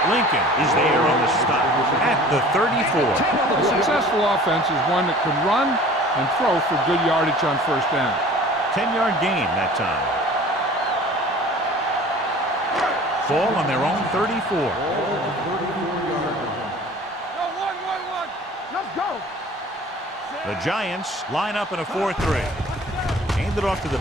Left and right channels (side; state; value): both; normal; correlation 0.45